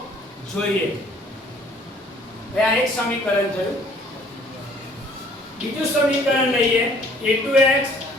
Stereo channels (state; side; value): normal; both; correlation 0.57